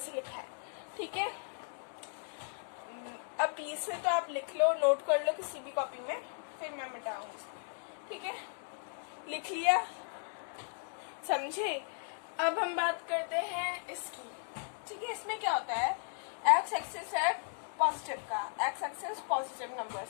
लिखा है, ठीक है। अब इसमें तो आप लिख लो, नोट कर लो किसी भी कॉपी में, फिर मैं मिटाऊंगी, ठीक है। लिख लिया, समझे। अब हम बात करते हैं इसकी, ठीक है। इसमें क्या होता है, एक्स एक्सिस है पॉजिटिव का, एक्स एक्सिस पॉजिटिव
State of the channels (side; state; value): right; silent; 54 dB below the other